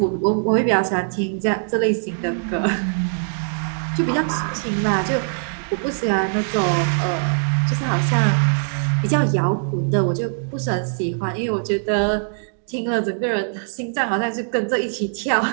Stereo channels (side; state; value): left; silent; digital silence